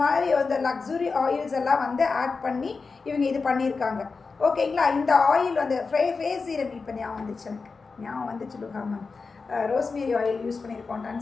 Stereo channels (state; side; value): quieter; right; 4.5 dB